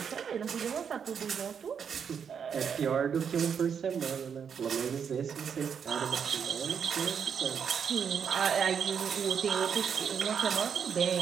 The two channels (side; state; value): left; quieter; 7.2 dB